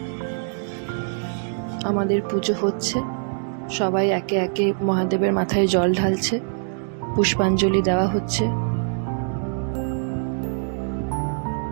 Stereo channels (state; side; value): silent; left; 63 dB below the other